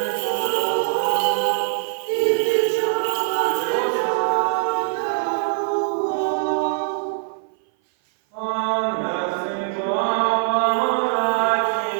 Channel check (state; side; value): silent; left; 57 dB below the other